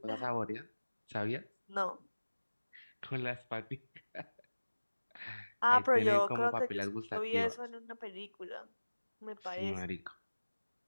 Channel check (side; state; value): both; inverted; correlation -1.00